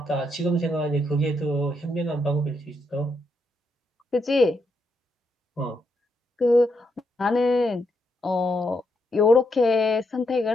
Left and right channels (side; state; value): both; normal; correlation 0.79